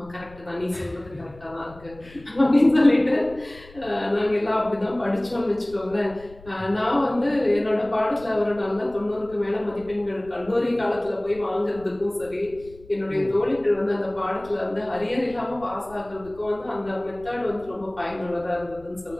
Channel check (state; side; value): noise; left; rumble, 21 dB below the sound